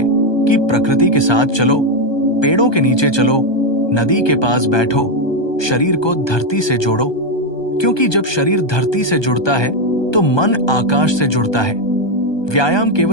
कि प्रकृति के साथ चलो, पेड़ों के नीचे चलो, नदी के पास बैठो, शरीर को धरती से जोड़ो, क्योंकि जब शरीर धरती से जुड़ता है तो मन आकाश से जुड़ता है। व्यायाम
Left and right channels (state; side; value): late; right; 1.2 ms